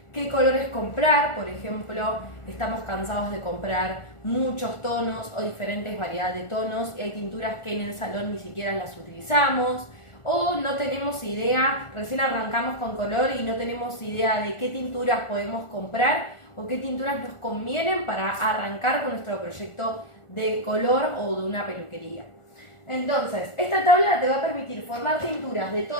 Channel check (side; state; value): right; late; 1.4 ms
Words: qué colores comprar. Por ejemplo, estamos cansados de comprar muchos tonos o diferentes variedades de tonos y hay tinturas que en el salón ni siquiera las utilizamos, o no tenemos idea, recién arrancamos con color y no tenemos idea de qué tinturas podemos comprar o qué tinturas nos convienen para arrancar con nuestro proyecto de color o de una peluquería. Entonces, esta tabla te va a permitir formar tinturas de